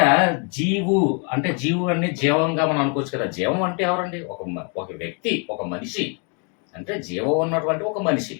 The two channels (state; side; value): quieter; right; 37.2 dB